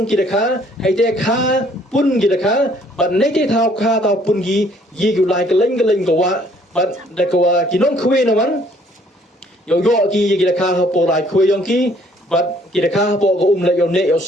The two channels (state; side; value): normal; both; correlation 0.62